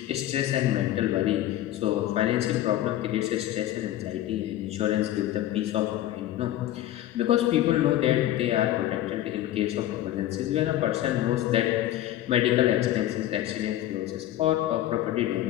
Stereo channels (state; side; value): quieter; right; 13.5 dB